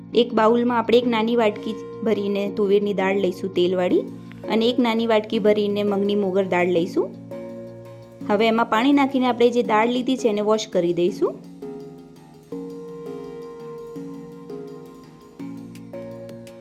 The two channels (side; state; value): both; identical; correlation 1.00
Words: એક બાઉલમાં આપણે એક નાની વાટકી ભરીને તુવેરની દાળ લઈશું તેલવાળી, અને એક નાની વાટકી ભરીને મગની મોગર દાળ લઈશું। હવે એમાં પાણી નાખીને આપણે જે દાળ લીધી છે એને વોશ કરી દઈશું।